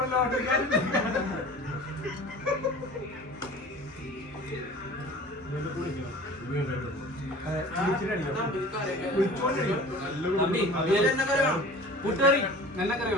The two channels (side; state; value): both; normal; correlation 0.42